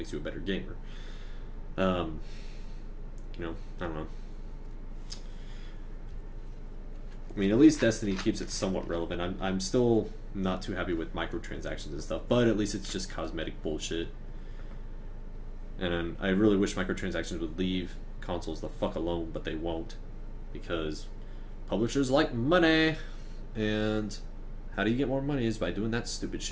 you a better gamer. I don't know. At least Destiny keeps it somewhat relevant. I'm still not too happy with microtransactions and stuff, but at least it's just cosmetic bullshit. And I really wish microtransactions would leave consoles the fuck alone, but they won't, because publishers like money, and how do you get more money is by doing that stupid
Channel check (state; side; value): identical; both; correlation 1.00